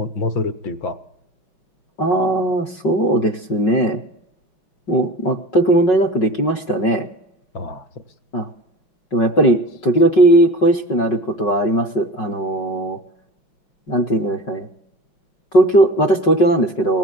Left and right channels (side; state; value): right; late; 5.4 ms